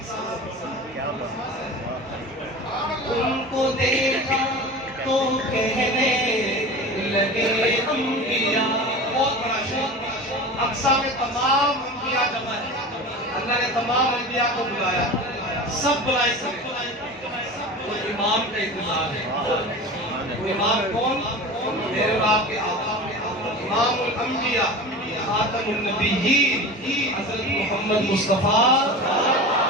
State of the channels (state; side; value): normal; both; correlation 0.33